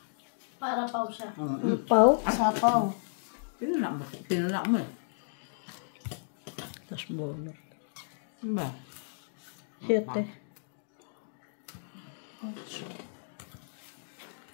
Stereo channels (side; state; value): right; silent; digital silence